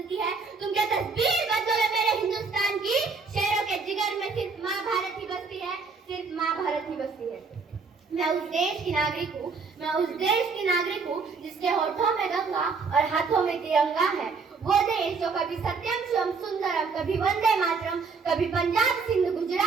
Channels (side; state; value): left; quieter; 4.7 dB